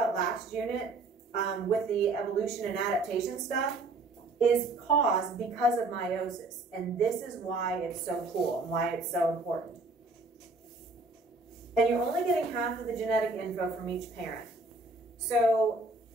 last unit with the evolution and adaptation stuff is caused because of meiosis. And this is why it's so cool and why it's so important. And you're only getting half of the genetic info from each parent. So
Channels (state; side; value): quieter; left; 3.2 dB